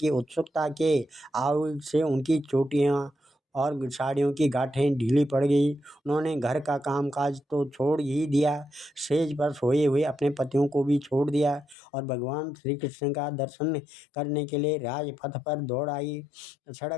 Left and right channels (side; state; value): right; drops out; at 11.8 s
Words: उत्सुकता के आवेग से उनकी चोटियाँ और साड़ियों की गांठें ढीली पड़ गई। उन्होंने घर का कामकाज तो छोड़ ही दिया, सेज पर सोए हुए अपने पतियों को भी छोड़ दिया और भगवान श्री कृष्ण का दर्शन करने के लिए राजपथ पर दौड़ आई।